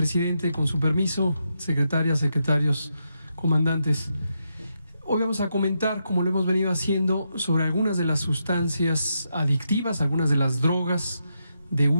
con su permiso, secretarias, secretarios, comandantes. Hoy vamos a comentar, como lo hemos venido haciendo, sobre algunas de las sustancias adictivas, algunas de las drogas de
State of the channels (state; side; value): inverted; both; correlation -0.83